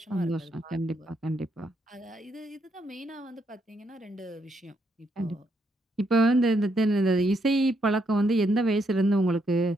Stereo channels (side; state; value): both; normal; correlation 0.76